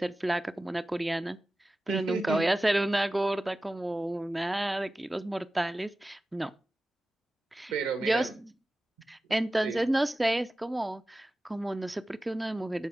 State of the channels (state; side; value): normal; both; correlation 0.95